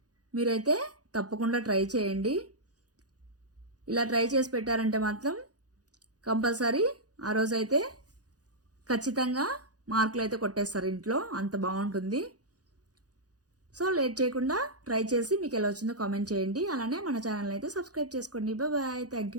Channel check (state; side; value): late; left; 0.68 ms